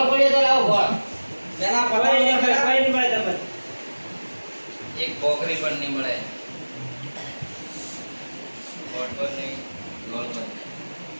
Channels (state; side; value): inverted; both; correlation -1.00